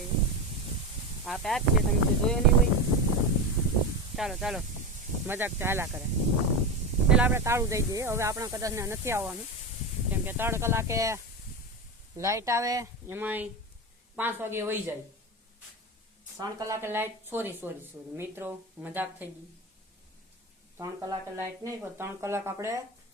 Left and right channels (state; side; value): normal; both; correlation 0.19